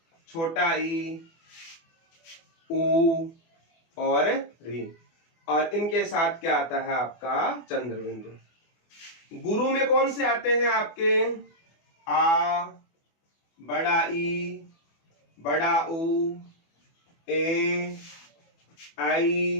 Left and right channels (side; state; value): right; late; 24 ms